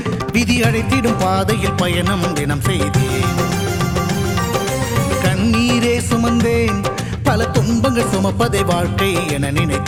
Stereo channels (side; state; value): both; identical; correlation 1.00